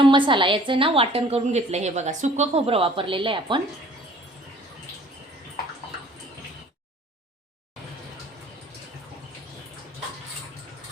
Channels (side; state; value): both; normal; correlation 0.52